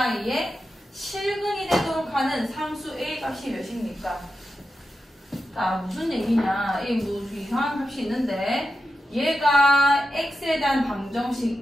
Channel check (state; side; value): normal; both; correlation 0.89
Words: 실근이 되도록 하는 상수 a 값이 몇입니까? 자, 무슨 얘기냐? 이 무슨 이상한 값이 있는데 얘가 x에 대한 방정식